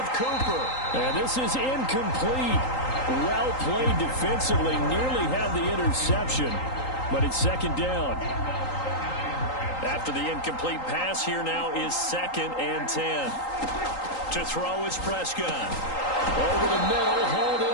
Cooper. And this is incomplete. Well played defensively. Nearly had the interception, but it's 2nd down. After the incomplete pass, here now is 2nd and 10. To throw is Prescott. Over the middle, hauled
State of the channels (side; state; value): right; late; 3.8 ms